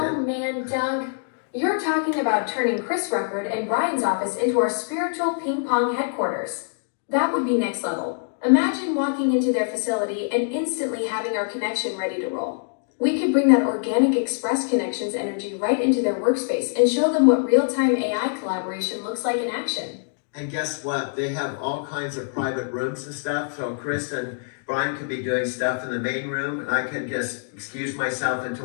man, Doug. You're talking about turning Chris Record and Brian's office into our spiritual ping pong headquarters. That would be next level. Imagine walking into their facility and instantly having our connection ready to roll. We could bring that organic Express Connections energy right into their workspace and show them what real-time AI collaboration looks like in action. And guess what? They have all kinds of private rooms and stuff. So Chris and Brian could be doing stuff in the main room, and I could just excuse myself into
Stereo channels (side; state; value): right; silent; digital silence